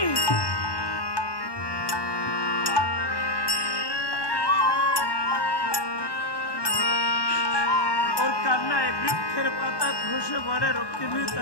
ওর কান্নায় বৃক্ষের পাতা খসে পড়ে। রুক্মিণী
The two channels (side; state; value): right; late; 1.1 ms